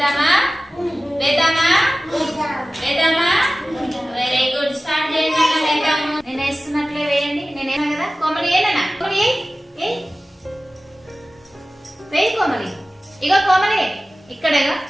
Very good. స్టార్ట్ చేయండి. వేద్దాము. నేను వేస్తున్నట్లే వేయండి. నేనేనా కదా? కోమలి ఏనా? కోమలి వేయి. కోమలి ఇగో కోమలి ఇక్కడేగా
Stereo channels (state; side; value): normal; both; correlation 0.96